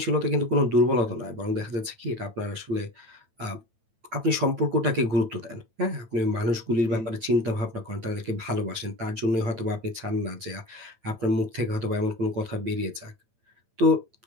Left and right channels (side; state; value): left; late; 9.0 ms